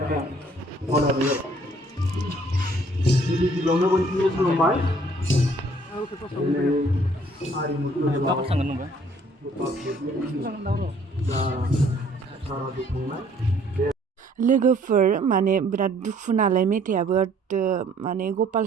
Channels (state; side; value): normal; both; correlation 0.60